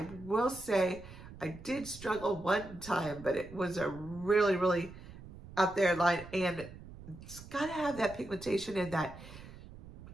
will say I did struggle one time, but it was a really, really out there line, and it's got to have that pigmentation and that,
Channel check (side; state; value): right; noise; rumble, 16 dB below the sound